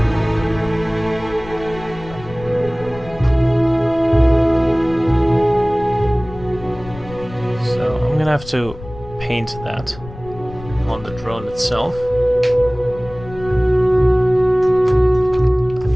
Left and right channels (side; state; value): left; noise; rumble, 16 dB below the sound